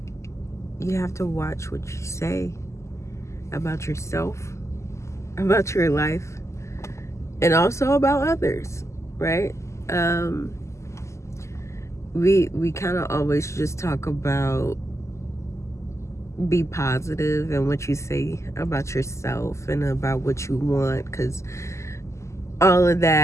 you have to watch what you say about yourself, about your life, and also about others, right? We kind of always just talk about be positive and what you say about yourself and about what you want, because all of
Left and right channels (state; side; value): late; right; 0.14 ms